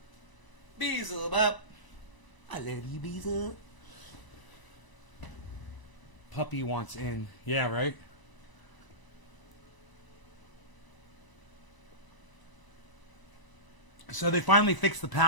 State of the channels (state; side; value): late; right; 1.0 ms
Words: Visa. Bop. I love you, Visa. Puppy wants in. Yeah, right? So they finally fixed the